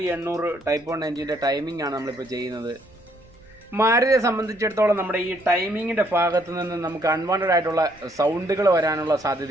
800 ടൈപ്പ് 1 എൻജിൻ്റെ ടൈമിംഗ് ആണ് നമ്മളിപ്പോൾ ചെയ്യുന്നത്. മാരുതിയെ സംബന്ധിച്ചിടത്തോളം നമ്മുടെ ഈ ടൈമിങ്ങിൻ്റെ ഭാഗത്ത് നിന്ന് നമുക്ക് അൺവാണ്ടഡ് ആയിട്ടുള്ള സൗണ്ടുകൾ വരാനുള്ള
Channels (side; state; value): right; noise; rumble, 27 dB below the sound